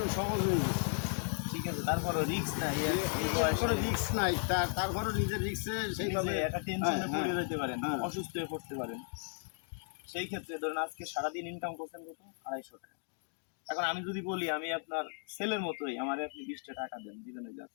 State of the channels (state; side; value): silent; right; 54 dB below the other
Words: সহজ হয়ে গেছে। ঠিক আছে, তারপরও রিস্ক নাই, কোনো রিস্ক নাই, তারপরও নিজের রিস্কে সেইভাবে একটা টেনশনে পড়ে যেতে পারেন, হ্যাঁ। অসুস্থ হয়ে পড়তে পারেন। সেই ক্ষেত্রে ধরেন আজকে সারাদিন ইনকাম করছেন কত? 250 টাকা। এখন আমি যদি বলি আমি আপনার ছেলের মতোই, আমারে আপনি 20টা টাকা দেন, দিবেন?